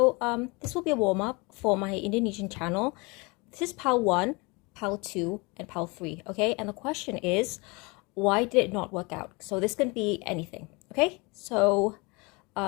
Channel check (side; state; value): right; quieter; 27.3 dB